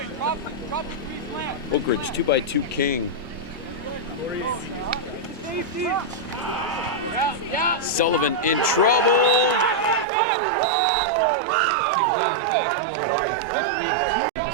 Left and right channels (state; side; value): drops out; left; at 10.1 s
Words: Oakridge 2x2 King. Sullivan in trouble. Taken down in the backfield by 52.